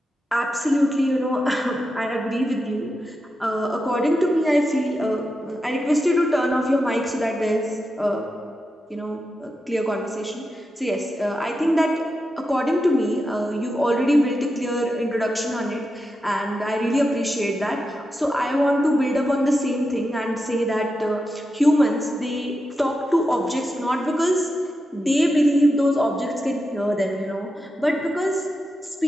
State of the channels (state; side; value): normal; both; correlation 0.88